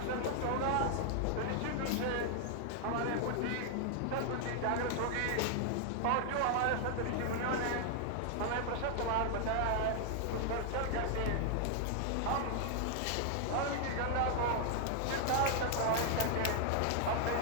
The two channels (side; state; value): both; different; correlation 0.00